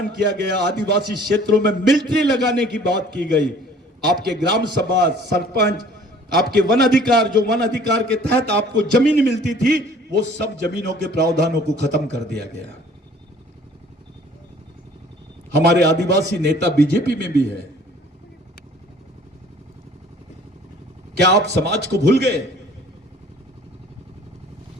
किया गया, आदिवासी क्षेत्रों में मिलिट्री लगाने की बात की गई, आपके ग्राम सभा, सरपंच, आपके वन अधिकार, जो वन अधिकार के तहत आपको जमीन मिलती थी, वो सब जमीनों के प्रावधानों को खत्म कर दिया गया। हमारे आदिवासी नेता बीजेपी में भी है। क्या आप समाज को भूल गए?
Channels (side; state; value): both; normal; correlation 0.52